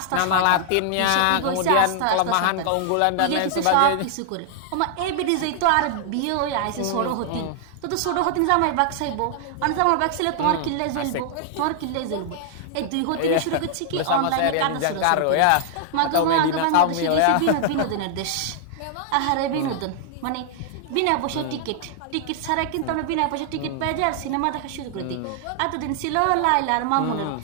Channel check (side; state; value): both; different; correlation -0.01